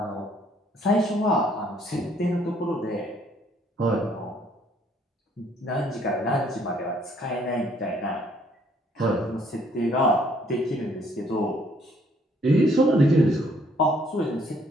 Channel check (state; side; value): normal; both; correlation 0.65